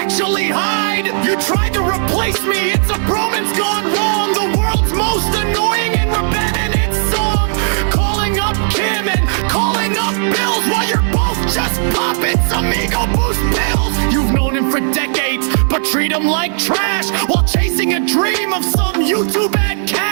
hide. You tried to replace me, it's a bromance gone wrong. The world's most annoying and repetitive song. Calling up Kim and calling up Bills while you're both just popping some ego boost pills. You've known him for decades, but treat him like trash while chasing a dream of some YouTube ad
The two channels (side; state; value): left; silent; digital silence